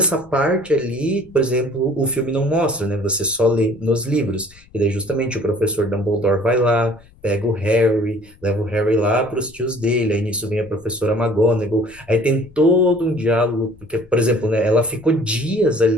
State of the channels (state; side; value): noise; left; rumble, 26 dB below the sound